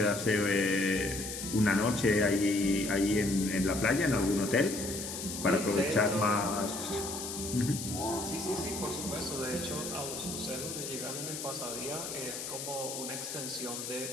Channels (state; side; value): noise; left; hiss, 6 dB below the sound